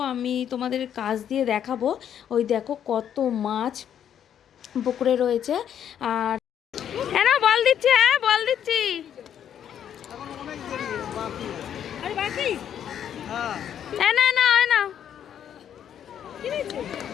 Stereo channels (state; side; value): quieter; right; 9.4 dB